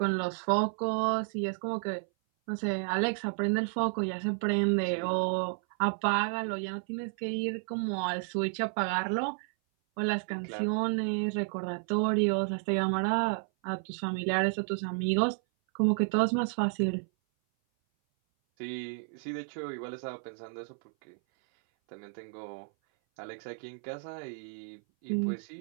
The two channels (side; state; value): left; silent; 57 dB below the other